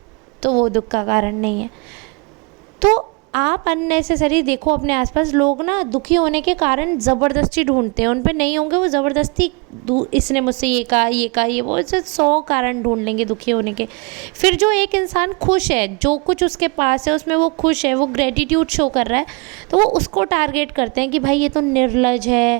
तो वो दुख का कारण नहीं है। तो आप अननेसेसरी देखो अपने आसपास लोग ना दुखी होने के कारण ज़बरदस्ती ढूंढते हैं, उन पे नहीं होंगे वो ज़बरदस्ती, इसने मुझसे ये कहा, ये कहा, ये वो, ऐसे 100 कारण ढूंढ लेंगे दुखी होने के। फिर जो एक इंसान खुश है, जो कुछ उसके पास है उसमें वो खुश है, वो ग्रेटिट्यूड शो कर रहा है, तो वो उसको टारगेट करते हैं कि भाई ये तो निर्लज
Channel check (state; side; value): quieter; left; 31.2 dB